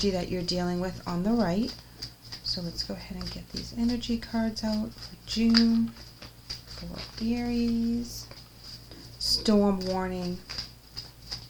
that you're dealing with on the right. So let's go ahead and get these energy cards out for June for Aries. Storm warning.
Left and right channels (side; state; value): both; identical; correlation 1.00